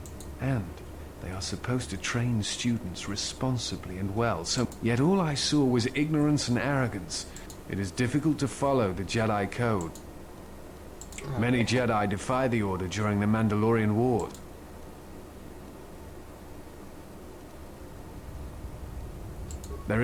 And they are supposed to train students responsibly and well, so... Yet all I saw was ignorance and arrogance. It is difficult to follow the Jedi Code. Many Jedi defy the Order during the Mandalorian Wars. There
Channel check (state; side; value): identical; both; correlation 1.00